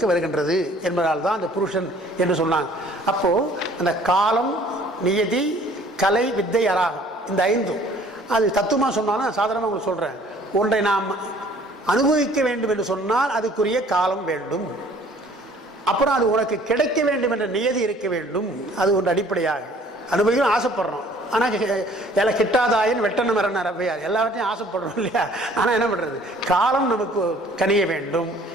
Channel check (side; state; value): both; normal; correlation 0.55